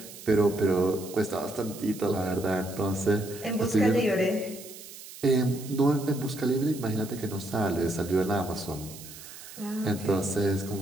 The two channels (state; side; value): noise; right; hiss, 15 dB below the sound